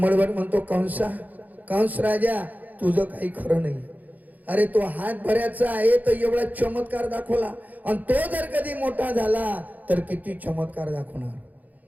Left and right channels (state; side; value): late; left; 0.080 ms